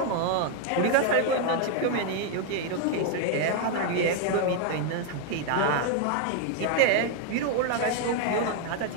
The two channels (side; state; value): both; different; correlation 0.01